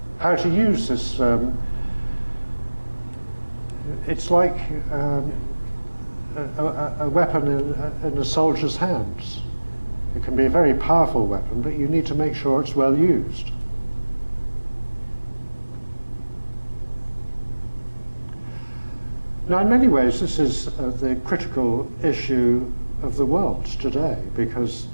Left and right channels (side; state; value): both; inverted; correlation -1.00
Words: how to use this. It's like a weapon in a soldier's hands. It can be a very powerful weapon, but you need to make sure it's well used. Now, in many ways, this is the critical issue of the world today, because